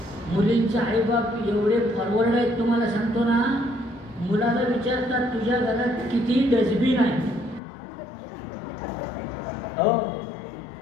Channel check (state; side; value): drops out; right; at 7.6 s